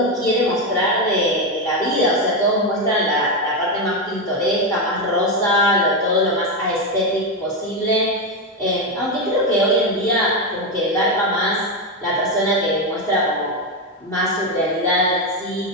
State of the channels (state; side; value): normal; both; correlation 0.09